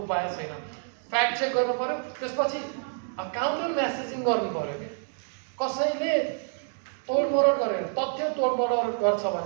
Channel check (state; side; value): silent; left; digital silence